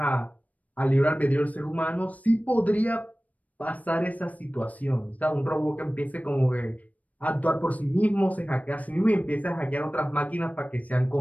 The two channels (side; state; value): right; late; 0.072 ms